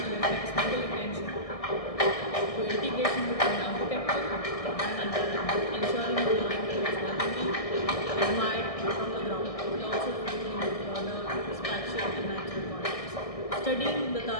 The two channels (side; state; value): right; late; 1.6 ms